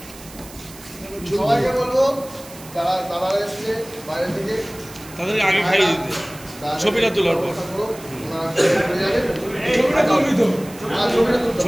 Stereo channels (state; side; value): noise; right; hiss, 18 dB below the sound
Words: সবাইকে বলবো যারা তারা এসছে বাইরে থেকে তাদেরকে আগে খাইয়ে দিতে ছবিটা তোলার পর। ছবিটা তুলবি তো?